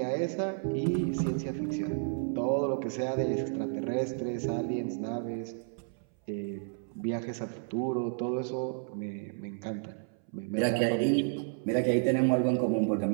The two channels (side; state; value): left; silent; 57 dB below the other